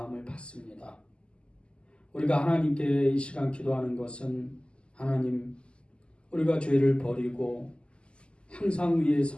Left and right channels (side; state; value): right; late; 0.052 ms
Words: 받습니다. 우리가 하나님께 이 시간 기도하는 것은 하나님, 우리가 죄를 버리고 항상 위에